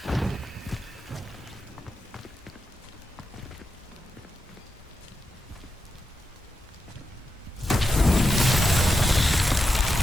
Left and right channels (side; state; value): both; normal; correlation 0.88